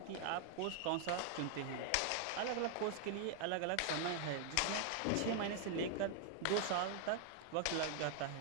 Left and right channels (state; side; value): different; both; correlation 0.00